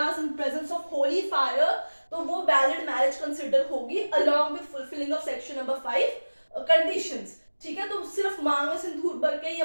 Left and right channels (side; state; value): both; inverted; correlation -1.00